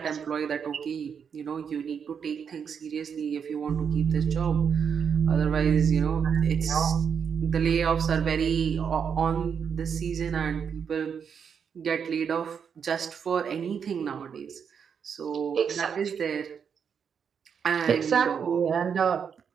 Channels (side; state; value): left; quieter; 7.0 dB